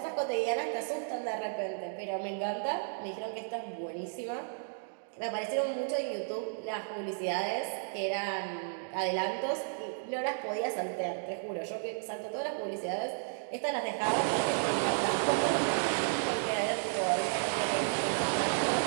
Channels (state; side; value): silent; left; digital silence